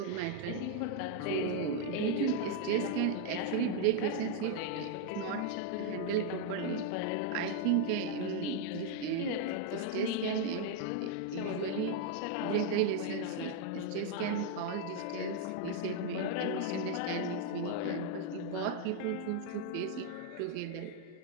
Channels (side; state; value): both; different; correlation 0.00